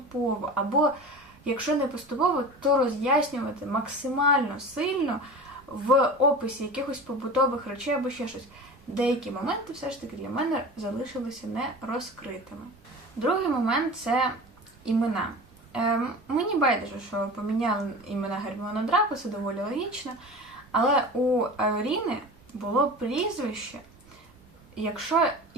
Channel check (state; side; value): normal; both; correlation 0.34